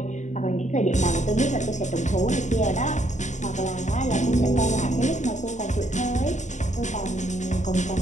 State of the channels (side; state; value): right; late; 0.35 ms